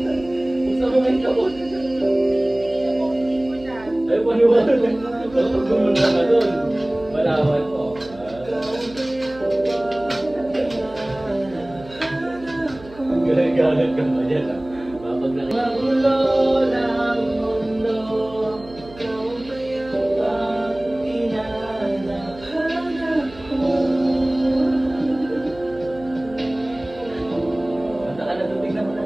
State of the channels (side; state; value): right; noise; hum, 20 dB below the sound